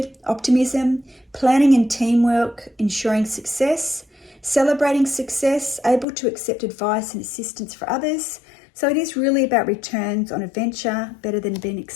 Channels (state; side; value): drops out; right; at 6.1 s